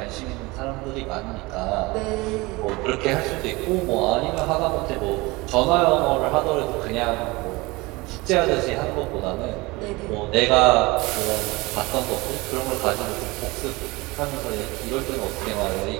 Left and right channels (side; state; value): left; quieter; 23.0 dB